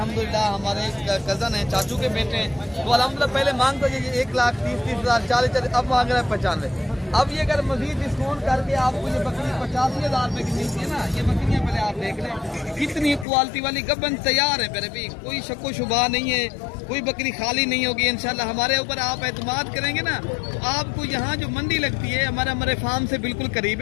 हमारे कज़न है, चाचू के बेटे हैं, तो अल्हम्दुलिल्लाह पहले मांगता ये 1,30,000 40,000, अब मांग रहा है 95। अब ये अगर मजीद डिस्काउंट करके आपको ये बकरी 85,000 रुपए की मिलती है ना, ये बकरियां पहले आप देख लें कितनी क्वालिटी वाली गबन तैयार है मेरे भी, कोई शक्को शुबा नहीं है, कोई बकरी खाली नहीं होगी इंशाल्लाह। हमारे ऊपर आप एतमाद करेंगे ना तो आपको यहाँ जो मंडी लगती है हमारे फार्म से बिल्कुल करीब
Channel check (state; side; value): drops out; right; at 13.2 s